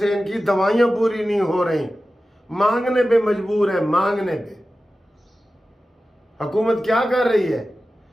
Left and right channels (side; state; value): both; normal; correlation 0.94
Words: इनकी दवाइयाँ पूरी नहीं हो रही, मांगने पे मजबूर है, मांगने पे। हुकूमत क्या कर रही है?